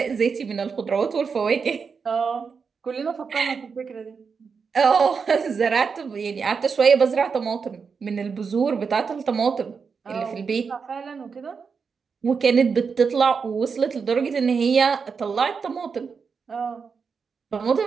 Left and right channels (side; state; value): left; quieter; 5.6 dB